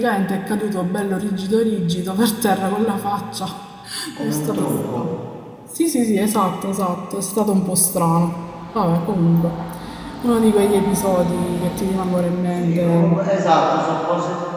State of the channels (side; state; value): both; identical; correlation 1.00